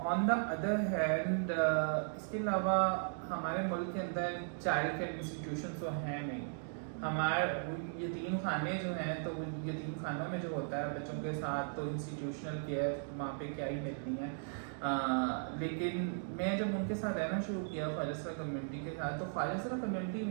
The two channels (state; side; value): silent; left; digital silence